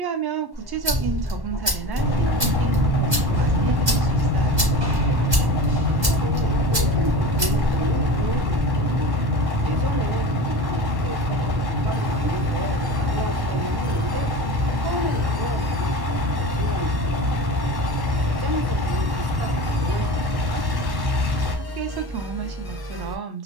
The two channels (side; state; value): left; late; 1.1 ms